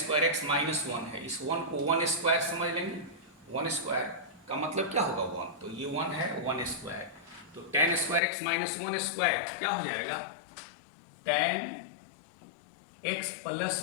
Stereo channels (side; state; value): right; drops out; at 8.2 s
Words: एक्स माइनस 1 है, इस 1 को 1 स्क्वायर समझ लेंगे। 1 स्क्वायर का मतलब क्या होगा 1, तो ये 1 है 1 स्क्वायर। तो tan square x minus 1 square क्या हो जाएगा, tan x plus